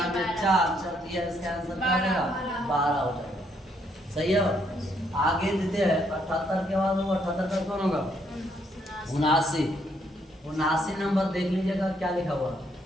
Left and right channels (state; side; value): normal; both; correlation 0.72